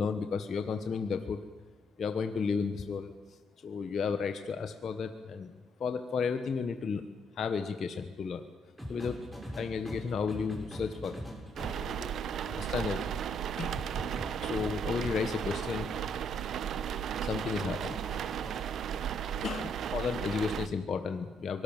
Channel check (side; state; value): both; normal; correlation 0.72